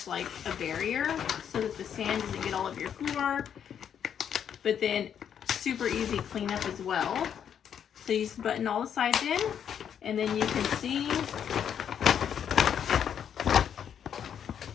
like a barrier so that the sand doesn't get all over your floor, but then super easy cleanup as well. So you just button all the sides in, and then you can see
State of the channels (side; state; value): right; quieter; 8.5 dB